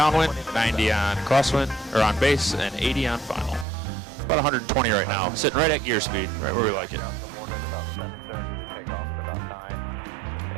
90 on crosswind, or on base, and 80 on final. About 120 right now, sitting right at gear speed, right where we like it.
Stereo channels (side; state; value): left; drops out; at 3.7 s